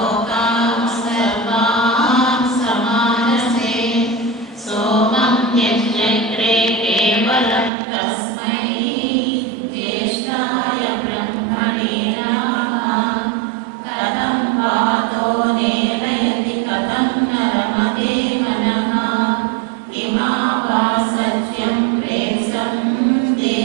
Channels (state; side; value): drops out; left; at 7.7 s